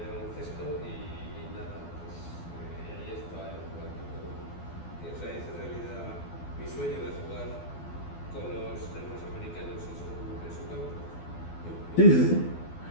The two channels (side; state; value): right; late; 12 ms